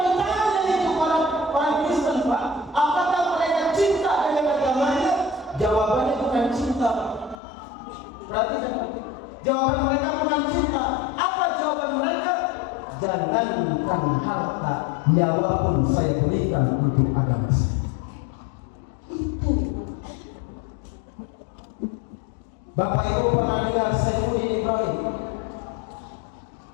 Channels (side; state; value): right; drops out; at 7.4 s